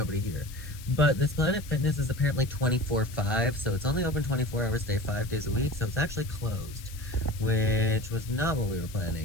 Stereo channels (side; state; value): left; noise; hiss, 18 dB below the sound